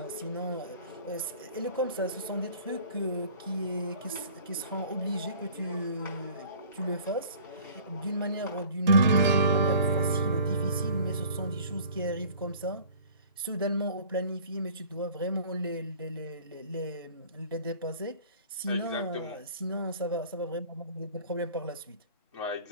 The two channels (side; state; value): both; inverted; correlation -0.48